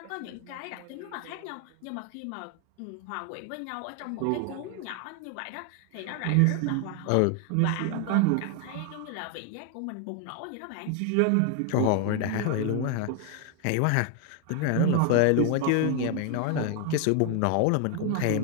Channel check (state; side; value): different; both; correlation 0.01